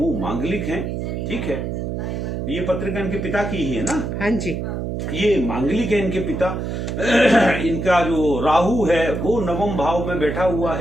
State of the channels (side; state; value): right; noise; hum, 3 dB below the sound